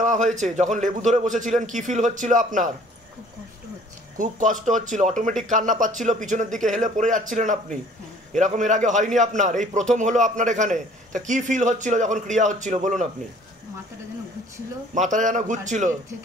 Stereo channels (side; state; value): both; normal; correlation 0.54